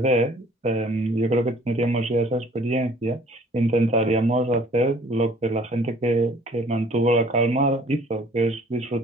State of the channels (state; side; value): normal; both; correlation 0.54